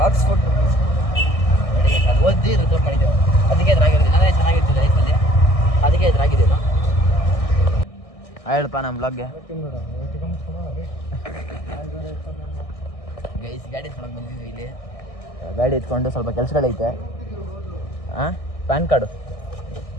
ಆಕ್ಸ್ಫೋರ್ಡ್ ನೋಡಿ ಅದು ಓದಿ ರಿಸರ್ವ್ ಮಾಡಿದ್ದೆವು. ಅದಕ್ಕೆ ಎದುರಾಗಿರೋದಿಲ್ಲ, ನಾನೇ ಚೆನ್ನಾಗಿರ್ತಿದ್ದೆ ಲೈಫಲ್ಲಿ, ಅದಕ್ಕೆ ಎದುರಾಗಿದ್ದೇನು. ಹೇಳಪ್ಪ ನಮ್ಮ ಬ್ಲಾಗ್ಗೆ ಗೈಸ್. ಗಾಡಿ ಎತ್ಕೊಂಡು ಬಂದಿದ್ವಿ ಇಲ್ಲಿ. ಗಾಡಿ ಎತ್ಕೊಂಡು ಸ್ವಲ್ಪ ಕೆಲಸಗಳೈತೆ. ಹಾಂ ಪ್ಯಾನ್ ಕಾರ್ಡು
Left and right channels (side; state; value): right; late; 1.6 ms